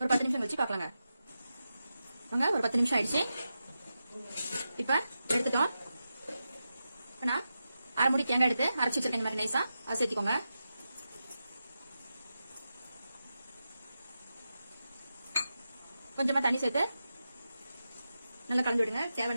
10 நிமிஷம் வச்சு பார்க்கலாங்க. வாங்க, ஒரு 10 நிமிஷம் ஆயிடுச்சு. இப்ப எடுத்துட்டோம். நான் 1/2 மூடி தேங்காய் எடுத்து அரைச்சு வச்சிருக்கேன். இந்த மாதிரி நைஸா அதை சேர்த்துக்கோங்க. கொஞ்சமா தண்ணி சேர்த்து நல்லா கலந்து விடுங்க.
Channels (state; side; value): inverted; both; correlation -0.90